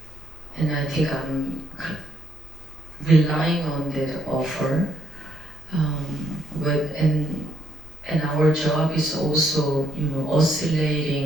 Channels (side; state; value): both; normal; correlation 0.74